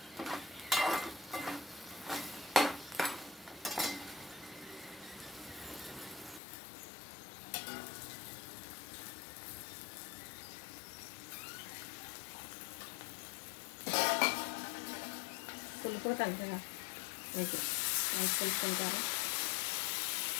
పులుపు తగ్గగా మీకు మంచి పులుపుకుంటారు.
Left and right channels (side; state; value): right; drops out; at 6.4 s